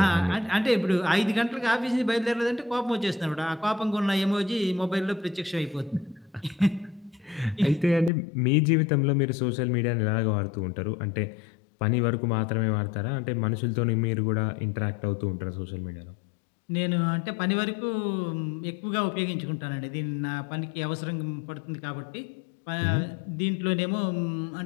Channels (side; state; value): right; drops out; at 8.1 s